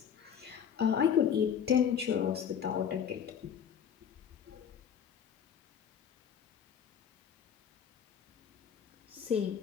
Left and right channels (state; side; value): quieter; right; 8.2 dB